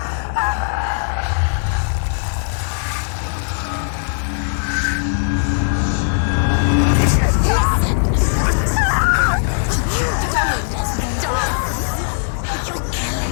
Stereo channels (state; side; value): silent; right; digital silence